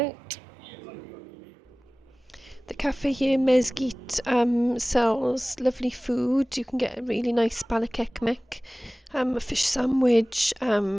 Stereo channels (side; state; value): both; normal; correlation 0.98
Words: The cafe here, Mezgit, sells lovely food. You can get a really nice balak ekmek, a fish sandwich,